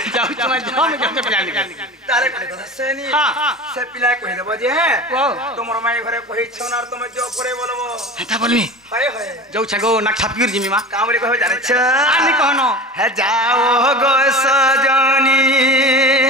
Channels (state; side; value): normal; both; correlation 0.33